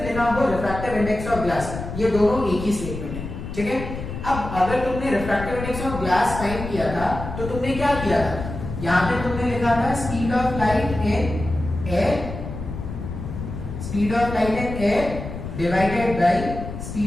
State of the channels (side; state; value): left; noise; rumble, 8 dB below the sound